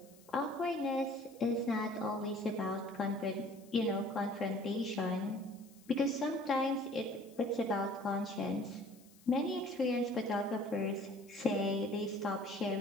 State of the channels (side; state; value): left; noise; hiss, 26 dB below the sound